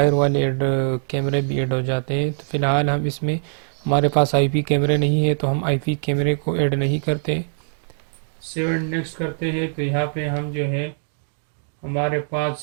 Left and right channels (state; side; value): silent; left; digital silence